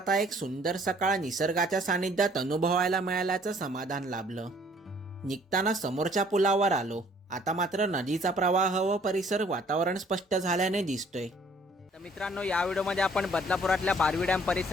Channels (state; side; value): normal; both; correlation 0.59